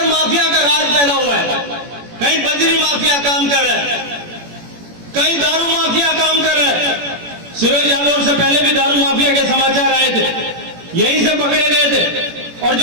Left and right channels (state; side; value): late; left; 17 ms